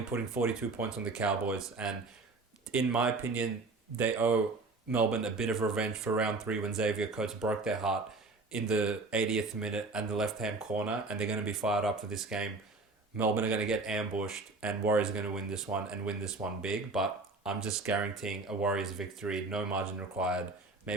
putting 42 points on the Cowboys, and in my opinion, they owe Melbourne a bit of revenge for round 3 when Xavier Coates broke their heart in the 80th minute and the left-hand corner, and they're going to be fired up for this game. Melbourne are going to get ambushed, and Warriors are going to win this one and win this one big, but I'm just guaranteeing a Warriors victory, no margin required.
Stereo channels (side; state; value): left; quieter; 3.5 dB